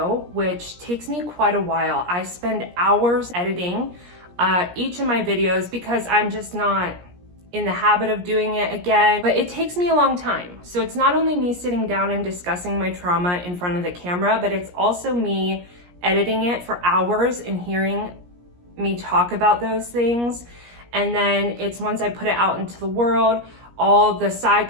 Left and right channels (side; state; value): left; late; 17 ms